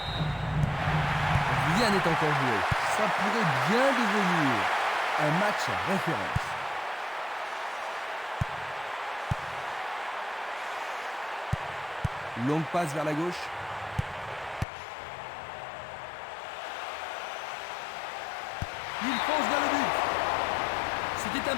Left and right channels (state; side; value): drops out; right; at 14.7 s